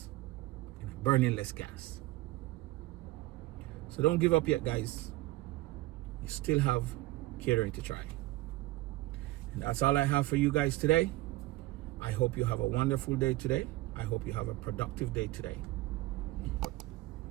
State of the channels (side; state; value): left; quieter; 18.1 dB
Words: and I'm burning less gas. So don't give up yet, guys. You still have catering to try. And that's all I have for you guys today. I hope you have a wonderful day today. I hope you have a productive day today.